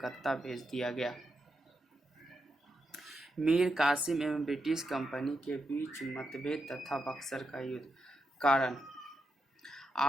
भेज दिया गया। मीर कासिम एवं ब्रिटिश कंपनी के बीच मतभेद तथा बक्सर का युद्ध। कारण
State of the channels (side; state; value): both; normal; correlation 0.85